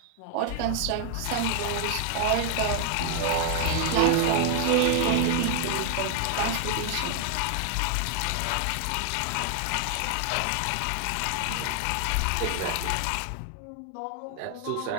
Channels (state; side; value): different; both; correlation 0.00